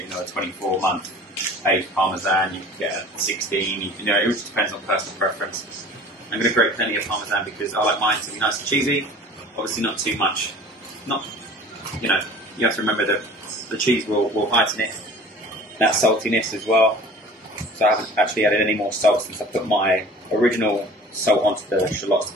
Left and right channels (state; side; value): normal; both; correlation 0.45